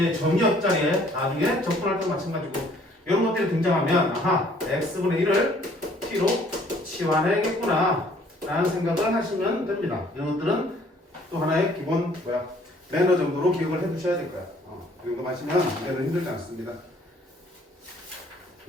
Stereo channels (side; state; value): both; normal; correlation 0.59